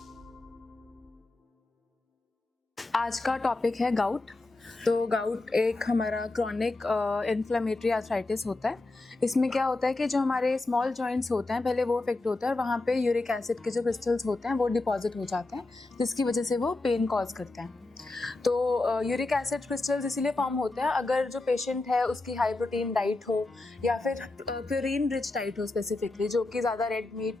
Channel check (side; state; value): right; quieter; 3.1 dB